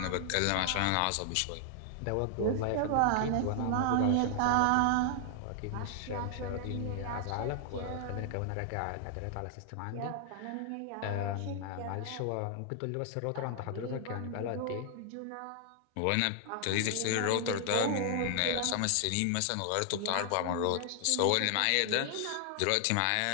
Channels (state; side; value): different; both; correlation 0.00